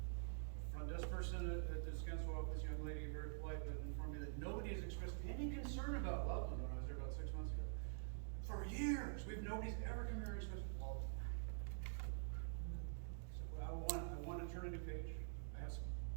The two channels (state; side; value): silent; left; digital silence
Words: Front desk person at the Descanso office, young lady, very polite, but informed me that nobody has expressed any concern about Loveland when I was there about 6 months ago. For years, nobody's ever come here and expressed, well, so I want to turn a new page. I have some